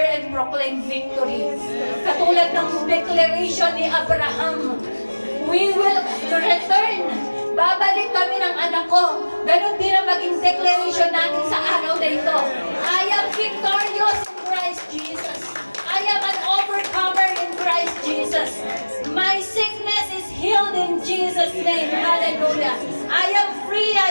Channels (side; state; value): both; inverted; correlation -1.00